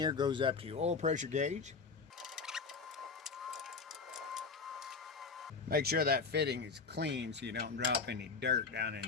goes up to your oil pressure gauge. Make sure that fitting is clean so you don't drop any dirt down in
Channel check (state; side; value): quieter; right; 4.8 dB